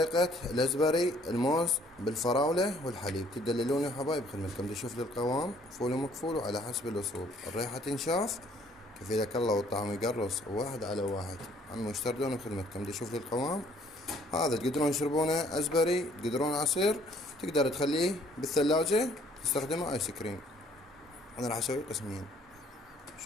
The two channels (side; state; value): both; normal; correlation 0.61